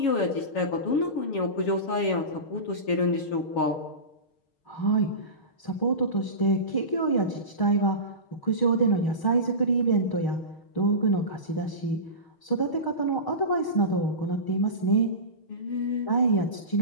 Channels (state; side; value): late; right; 6.4 ms